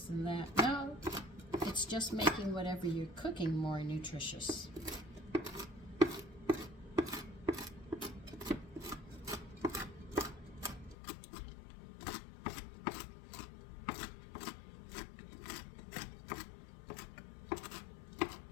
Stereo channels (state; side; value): drops out; right; at 11.0 s